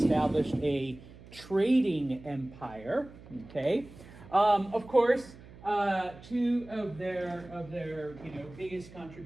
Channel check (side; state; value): right; noise; hum, 19 dB below the sound